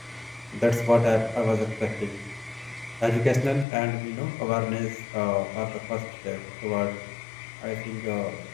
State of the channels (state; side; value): drops out; right; at 3.7 s